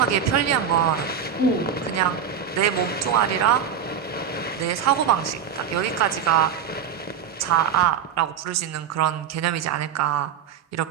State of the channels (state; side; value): quieter; left; 7.9 dB